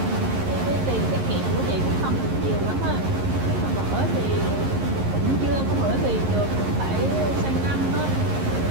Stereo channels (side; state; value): left; late; 11 ms